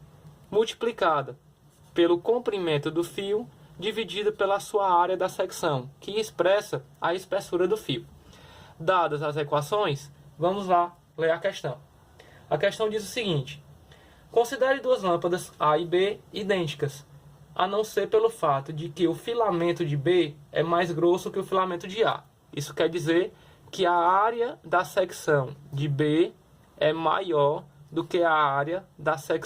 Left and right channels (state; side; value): identical; both; correlation 1.00